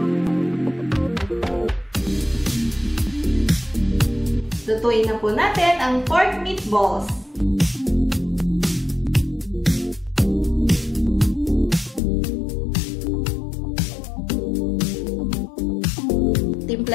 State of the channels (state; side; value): drops out; right; at 12.0 s